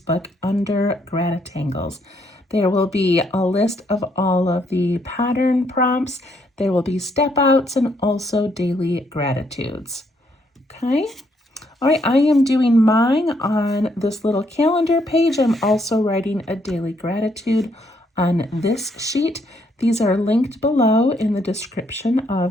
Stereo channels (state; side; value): normal; both; correlation 0.72